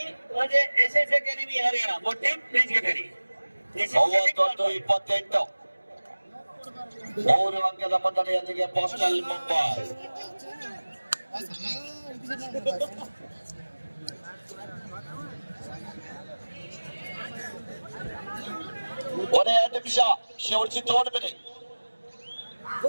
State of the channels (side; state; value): both; inverted; correlation -1.00